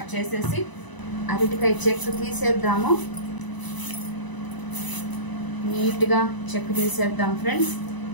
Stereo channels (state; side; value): late; right; 1.0 ms